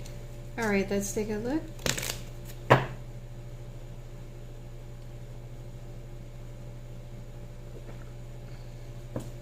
Alright, let's take a look.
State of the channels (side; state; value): both; identical; correlation 1.00